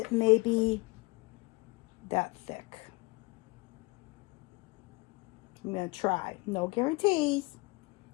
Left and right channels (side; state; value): right; quieter; 25.5 dB